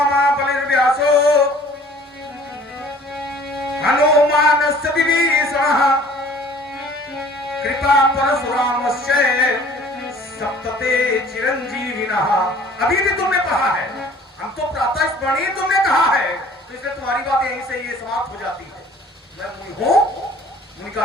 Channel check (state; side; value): normal; both; correlation 0.51